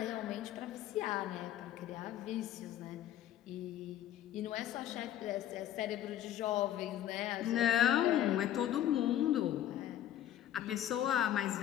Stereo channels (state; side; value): quieter; right; 11.6 dB